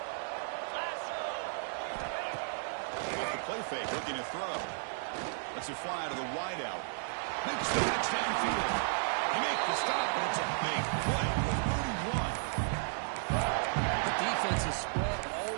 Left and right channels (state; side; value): silent; left; digital silence